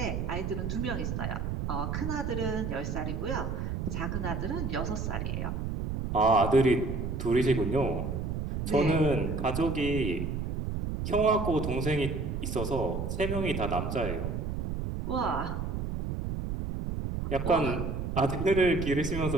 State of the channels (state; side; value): noise; right; rumble, 3 dB below the sound